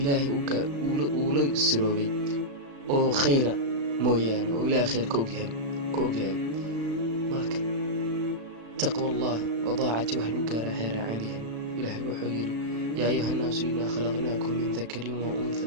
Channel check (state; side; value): late; left; 36 ms